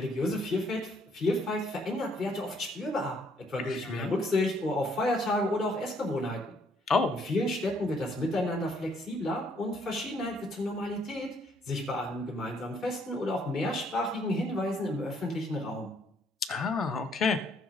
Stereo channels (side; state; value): both; normal; correlation 0.67